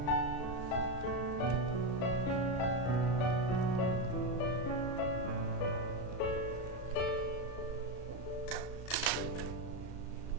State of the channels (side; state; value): right; late; 34 ms